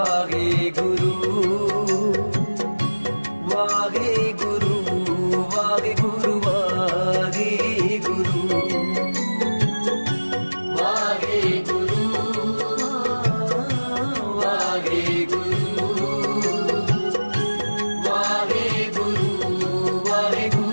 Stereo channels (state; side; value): inverted; both; correlation -1.00